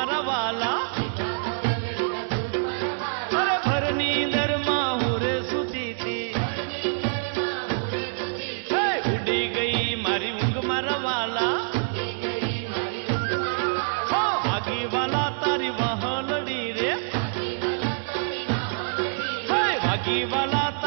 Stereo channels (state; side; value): silent; left; digital silence